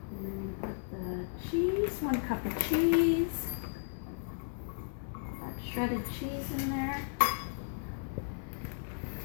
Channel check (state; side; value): silent; right; digital silence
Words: Cheese, 1 cup of cheese. Put that shredded cheese in there.